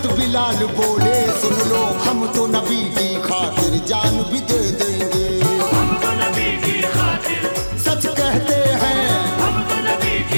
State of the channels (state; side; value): inverted; both; correlation -1.00